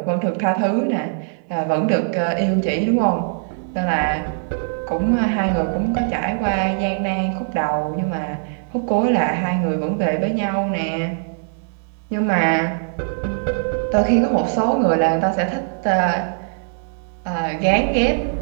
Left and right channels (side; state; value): left; silent; digital silence